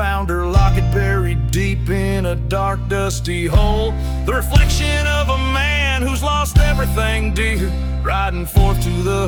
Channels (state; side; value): identical; both; correlation 1.00